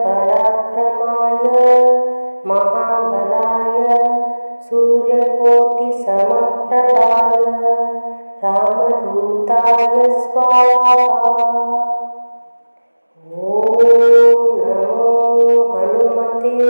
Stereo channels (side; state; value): both; inverted; correlation -1.00